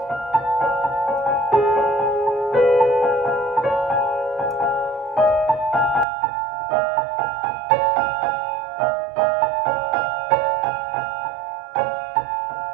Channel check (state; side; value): drops out; left; at 6.1 s